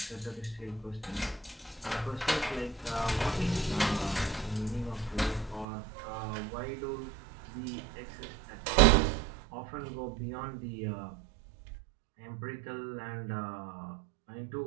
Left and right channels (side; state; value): left; drops out; at 5.7 s